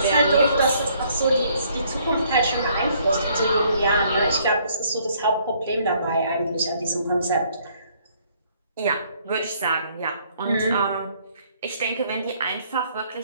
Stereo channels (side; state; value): both; inverted; correlation -0.65